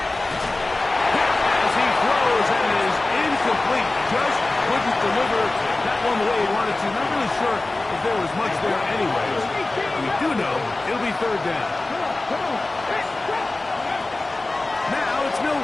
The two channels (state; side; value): quieter; right; 3.0 dB